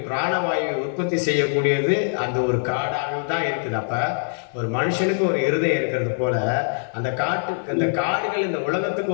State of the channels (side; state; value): right; silent; 62 dB below the other